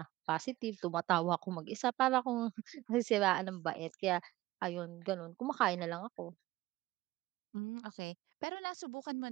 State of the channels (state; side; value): quieter; left; 17.7 dB